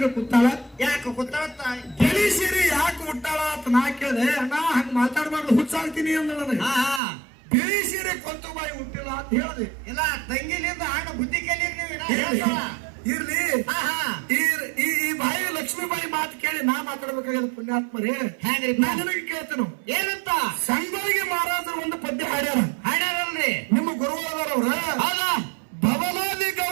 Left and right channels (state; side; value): drops out; left; at 7.0 s